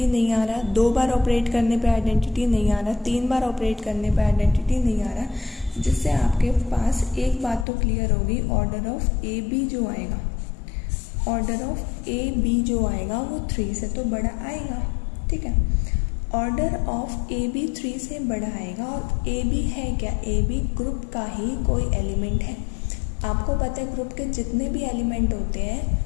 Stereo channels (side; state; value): right; drops out; at 7.7 s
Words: नहीं आ रहा, 2 बार ऑपरेट करने पे आइडेंटिटी नहीं आ रहा, 3 बार ऑपरेट करने पे आइडेंटिटी नहीं आ रहा, जिससे आपके पास एक बात तो क्लियर होगी, ऑर्डर ऑफ ए बी जो आएगा, ऑर्डर ऑफ ए बी जो आएगा वो 3 से तो बड़ा आएगा, ठीक है। ऑर्डर ऑफ ए बी 3 से बड़ा आएगा, और ए बी है क्या, ए बी ग्रुप का ही कोई एलिमेंट है। आपको पता है ग्रुप के जितने भी एलिमेंट होते हैं